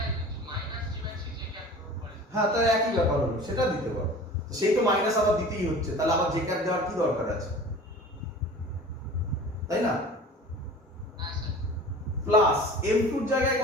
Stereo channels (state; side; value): normal; both; correlation 0.41